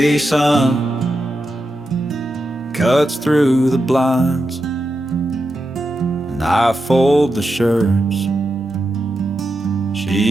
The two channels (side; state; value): both; normal; correlation 0.88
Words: sun cuts through the blinds, and I fold the shirts